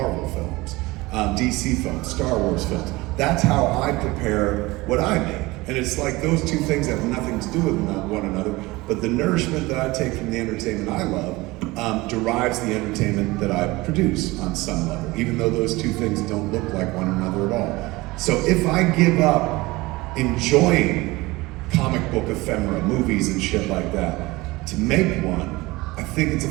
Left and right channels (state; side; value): quieter; left; 21.3 dB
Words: films, DC films, Star Wars films. That's how I prepare what I make. And it's like those two things have nothing to do with one another, but the nourishment that I take from the entertainment I love derives the entertainment that I produce on some level, even though those two things don't look like one another at all. So if I give up enjoying comic book ephemera, movies and shit like that, to make one, I think it's a